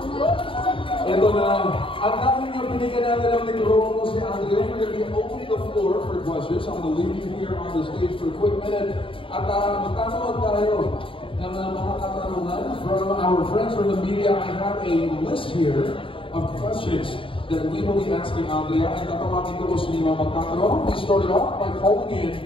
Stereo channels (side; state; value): right; late; 0.25 ms